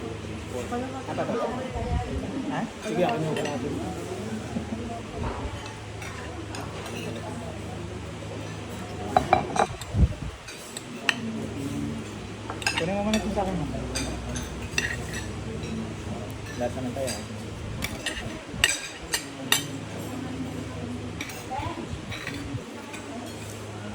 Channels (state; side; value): identical; both; correlation 1.00